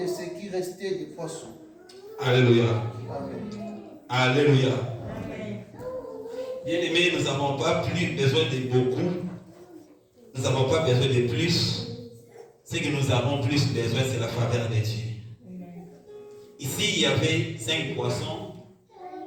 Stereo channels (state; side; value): identical; both; correlation 1.00